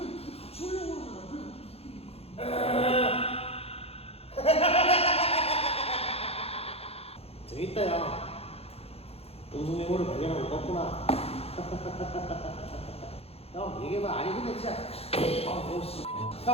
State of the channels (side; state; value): right; late; 0.29 ms